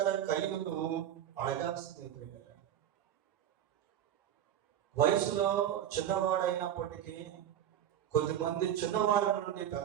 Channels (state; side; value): quieter; left; 10.5 dB